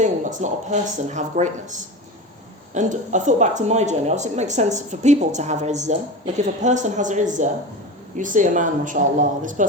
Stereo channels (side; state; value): both; normal; correlation 0.27